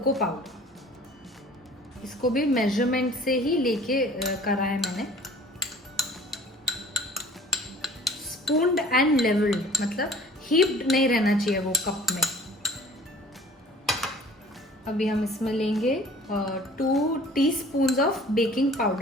पाउडर. इसको भी मेजरमेंट से ही लेके करा है मैंने. स्पून्ड एंड लेवल्ड, मतलब हीप्ड नहीं रहना चाहिए वो कप में. अभी हम इसमें लेंगे 2 teaspoons of baking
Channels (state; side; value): normal; both; correlation 0.48